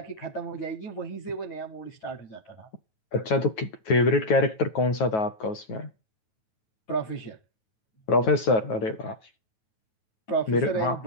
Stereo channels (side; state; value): right; late; 9.3 ms